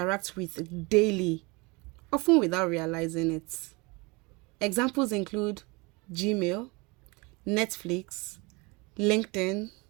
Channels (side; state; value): left; quieter; 26.7 dB